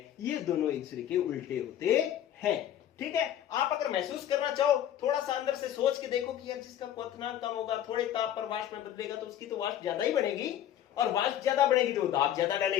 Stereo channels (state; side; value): quieter; right; 11.1 dB